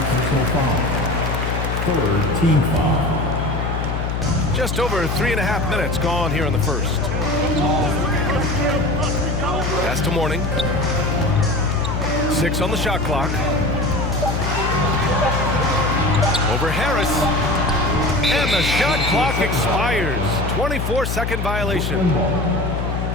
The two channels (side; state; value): left; noise; hum, 2 dB below the sound